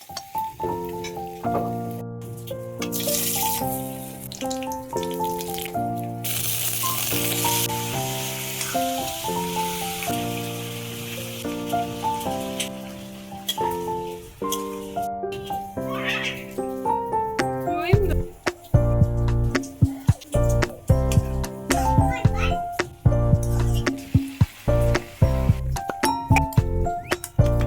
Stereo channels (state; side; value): identical; both; correlation 1.00